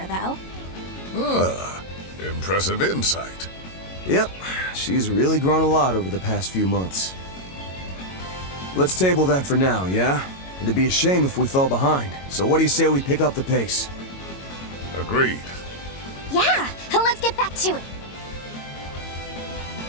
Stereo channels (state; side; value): late; right; 22 ms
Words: though. Ah, impressive insight. Yep, she's really grown a lot over the past few months. Let's table that for now, yeah? It'd be a shame if we fell behind. So what do you say we pick up the pace? Agreed. Yeah, let's get back to it.